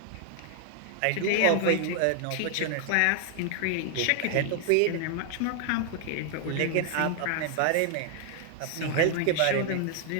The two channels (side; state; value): both; different; correlation 0.00